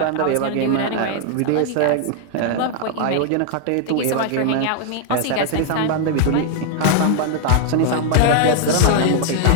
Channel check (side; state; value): both; different; correlation 0.00